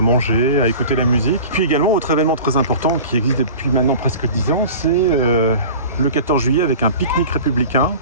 à écouter la musique. Puis également, autre événement très important qui existe depuis maintenant presque 10 ans, c'est le 14 juillet avec un pique-nique républicain.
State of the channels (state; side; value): inverted; both; correlation -0.38